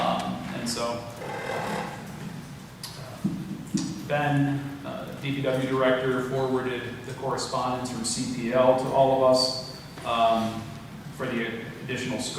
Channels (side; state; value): both; identical; correlation 1.00